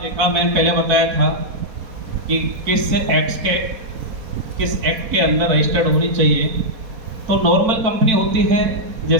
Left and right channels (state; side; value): late; left; 4.2 ms